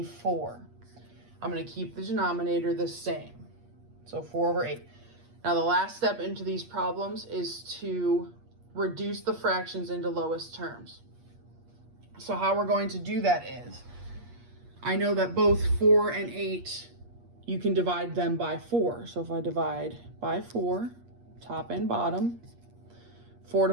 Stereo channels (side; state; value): left; late; 8.4 ms